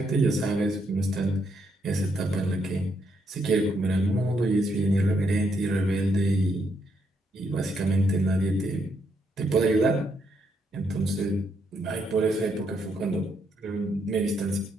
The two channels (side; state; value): both; normal; correlation 0.76